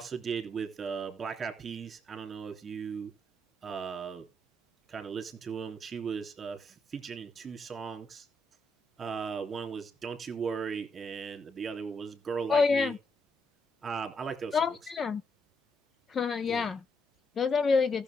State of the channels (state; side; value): normal; both; correlation 0.79